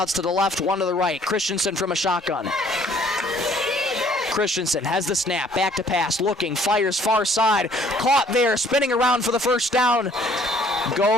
to the left, 1 to the right. Christensen from a shotgun. Christensen has the snap, back to pass, looking, fires far side. Caught there, spinning around for the first down.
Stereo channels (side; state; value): both; normal; correlation 0.59